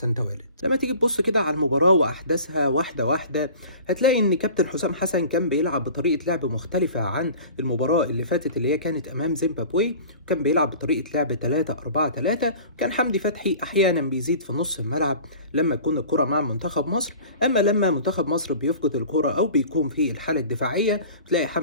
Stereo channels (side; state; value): both; inverted; correlation -0.42